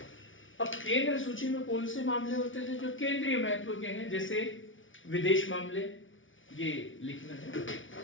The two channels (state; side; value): late; right; 0.56 ms